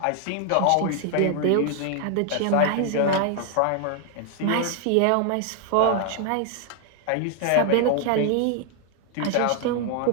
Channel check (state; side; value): different; both; correlation 0.00